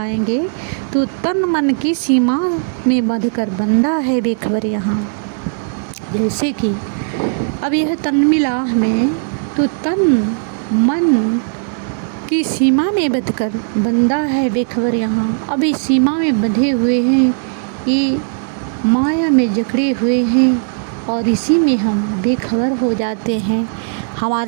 तो तन मन की सीमा में बंधकर बंदा है बेखबर यहाँ। जैसे कि अब यह तन मिला हमें तो तन मन की सीमा में बंधकर बंदा है बेखबर यहाँ। अब इस सीमा में बंधे हुए हैं, ये माया में जकड़े हुए हैं और इसी में हम बेखबर हो जाते हैं।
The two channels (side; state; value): left; silent; digital silence